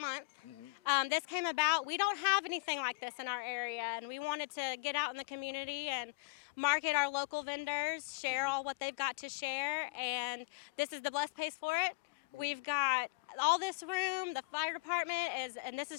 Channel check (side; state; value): right; quieter; 30.4 dB